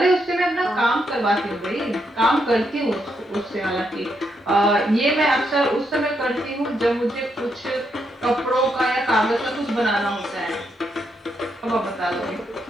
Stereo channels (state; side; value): normal; both; correlation 0.79